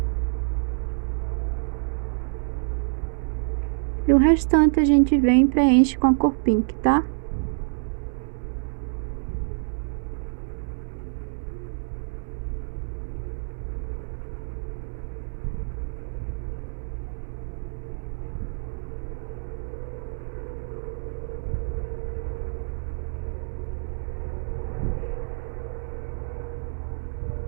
E o restante a gente vem e preenche com a cor pink, tá?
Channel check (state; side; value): silent; left; digital silence